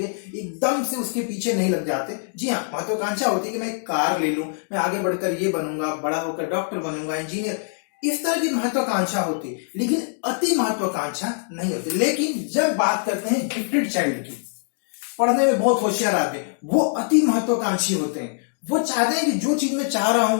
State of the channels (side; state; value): right; silent; digital silence